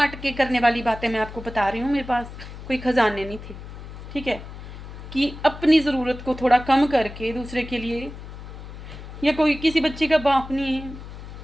के करने वाली बातें मैं आपको बता रही हूँ, मेरे पास कोई खजाने नहीं थे। ठीक है, कि अपनी ज़रूरत को थोड़ा कम करके दूसरे के लिए, या कोई किसी बच्चे का बाप नहीं है,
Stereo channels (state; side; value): noise; left; hum, 12 dB below the sound